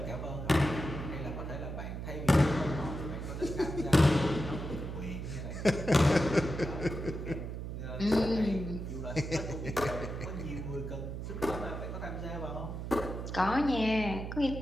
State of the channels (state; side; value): noise; right; hum, 6 dB below the sound